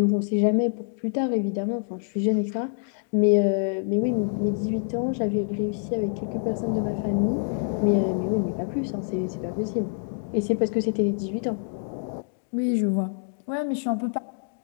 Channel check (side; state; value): right; silent; digital silence